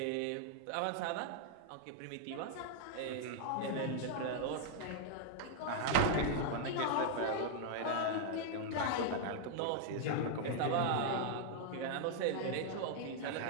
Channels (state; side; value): different; both; correlation -0.01